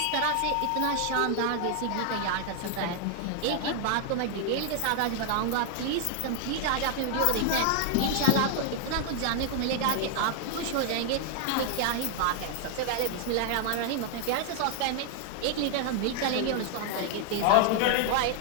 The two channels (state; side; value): different; both; correlation 0.00